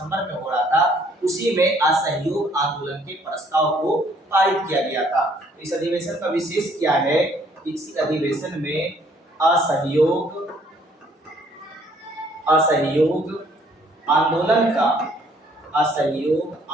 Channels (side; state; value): both; normal; correlation 0.63